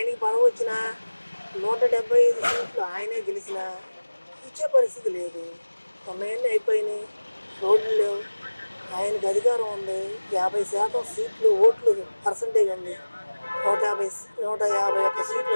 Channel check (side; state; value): both; inverted; correlation -1.00